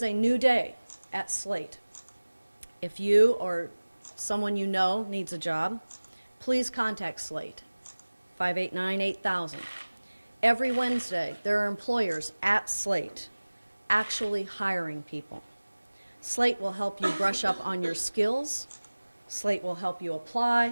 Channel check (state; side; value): inverted; both; correlation -1.00